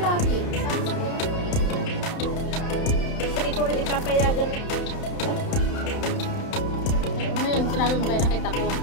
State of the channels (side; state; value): right; late; 31 ms